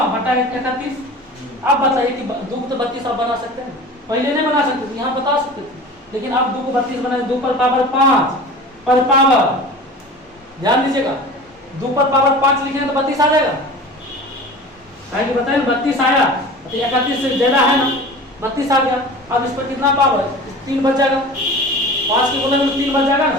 बटा 31। अब बताइए कि 2 को तो 32 आप बना सकते हैं, पहले नहीं बना सकते थे, यहाँ बता सकते थे, लेकिन अब 2 को 32 बनाए 2 पर पावर 5 पर पावर ध्यान दीजिएगा 2 पर पावर 5 लिखेंगे तो 32 आ जाएगा, कहेंगे बताइए 32 आया तो 31 से ज्यादा है ना 32 आ गया। अब इस पर कितना पावर 3 बच जाएगा, 5 के गुणे में 3 बच जाएगा ना,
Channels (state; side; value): normal; both; correlation 0.37